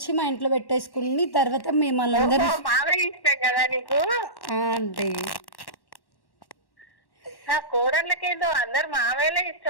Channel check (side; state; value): right; late; 1.1 ms